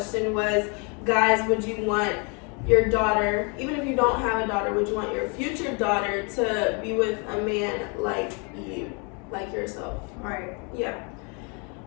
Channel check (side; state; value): right; quieter; 34.4 dB